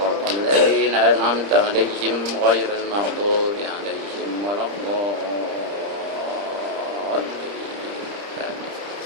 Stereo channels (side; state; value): left; late; 30 ms